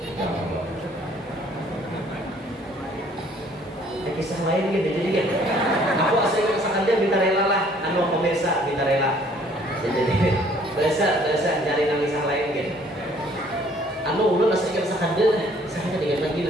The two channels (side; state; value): both; normal; correlation 0.59